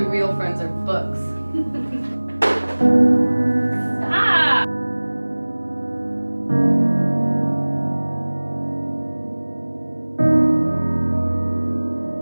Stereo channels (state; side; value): inverted; both; correlation -1.00